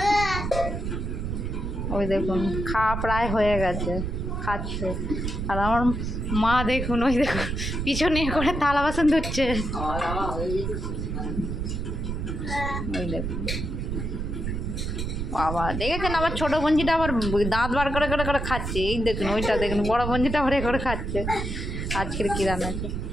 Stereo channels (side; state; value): right; noise; rumble, 3 dB below the sound